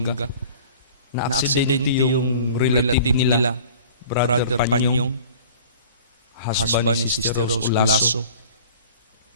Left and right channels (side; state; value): both; inverted; correlation -0.45